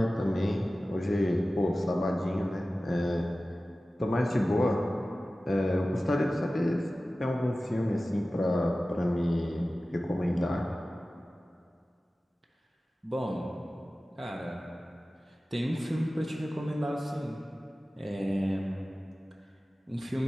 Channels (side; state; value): both; normal; correlation 0.96